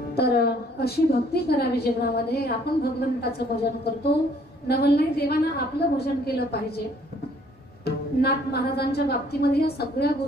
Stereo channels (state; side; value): normal; both; correlation 0.61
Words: तर अशी भक्ती करावी जीवनामध्ये। आपण भगवंताचं भजन करतो, नवलनाई देवाना आपलं भजन केलं पाहिजे। नाथ महाराजांच्या बाबतीमध्ये या सगळ्या